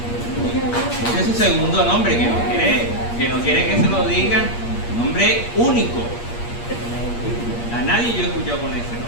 Ese es su segundo nombre, que no quiere que se lo diga. Nombre único. A nadie yo he escuchado con ese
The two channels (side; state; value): right; late; 8.5 ms